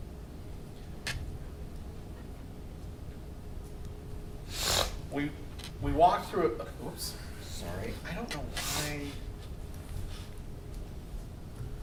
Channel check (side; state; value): both; identical; correlation 1.00